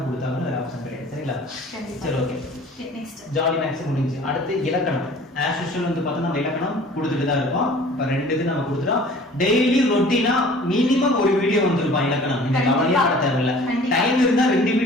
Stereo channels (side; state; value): both; normal; correlation 0.48